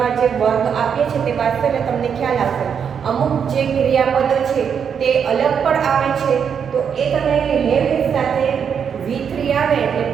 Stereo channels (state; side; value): quieter; left; 7.3 dB